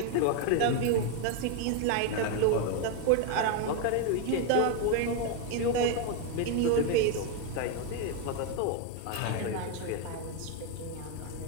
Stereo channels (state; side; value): different; both; correlation 0.01